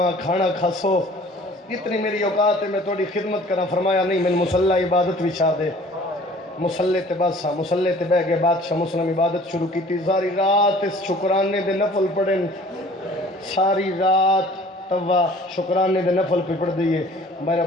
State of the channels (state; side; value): normal; both; correlation 0.50